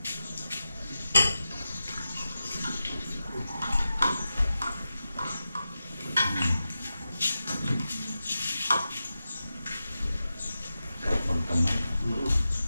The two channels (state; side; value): inverted; both; correlation -0.91